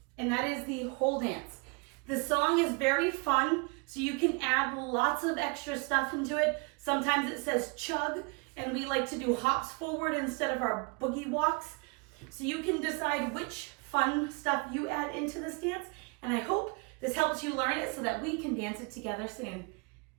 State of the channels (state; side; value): quieter; left; 31.1 dB